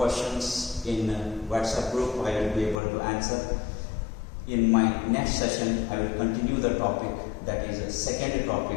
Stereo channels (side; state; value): right; drops out; at 2.8 s